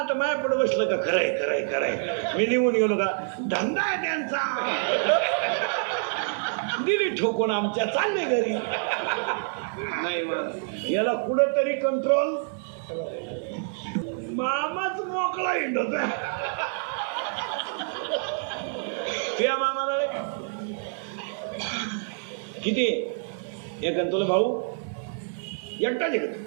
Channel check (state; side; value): silent; left; 60 dB below the other